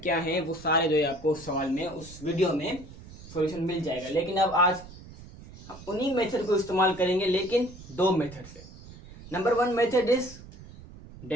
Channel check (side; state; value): right; noise; rumble, 17 dB below the sound